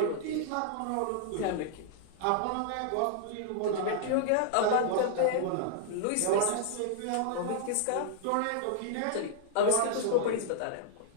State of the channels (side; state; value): both; different; correlation -0.01